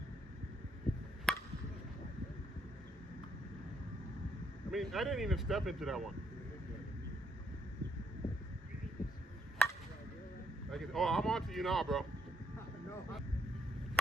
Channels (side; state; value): both; normal; correlation 0.74